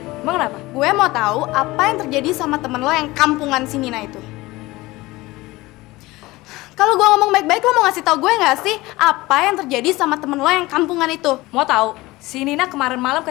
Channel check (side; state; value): right; quieter; 20.1 dB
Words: emang kenapa? Gue mau tahu apa yang terjadi sama temen lo yang kampungan si Nina itu. Kalau gue ngomong baik-baik, lo mau ngasih tahu gue nggak sih apa yang terjadi sama temen lo yang kampungan itu? Mau tahu? Si Nina kemarin malam